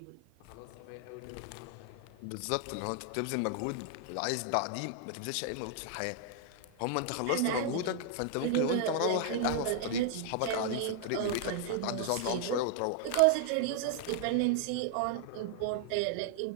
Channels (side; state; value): both; different; correlation 0.00